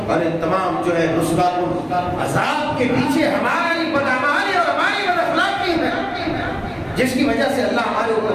اور ان تمام جو ہے رسوات عذاب کے پیچھے ہماری بدعمالی اور ہماری بداخلاقی ہے، جس کی وجہ سے اللہ ہمارے اوپر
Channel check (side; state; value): both; identical; correlation 1.00